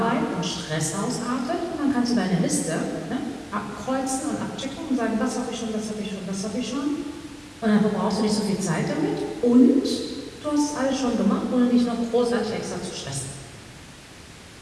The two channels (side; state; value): both; identical; correlation 1.00